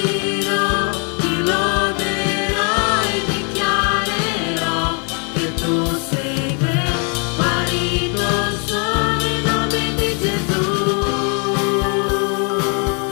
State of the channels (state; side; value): quieter; right; 37.2 dB